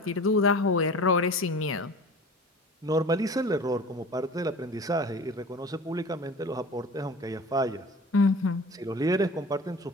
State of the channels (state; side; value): normal; both; correlation 0.39